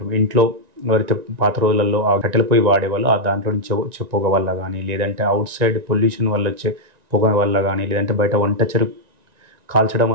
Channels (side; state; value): left; late; 1.9 ms